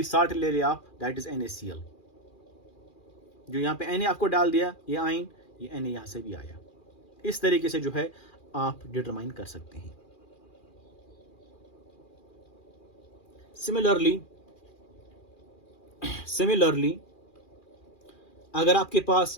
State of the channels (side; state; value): right; late; 2.4 ms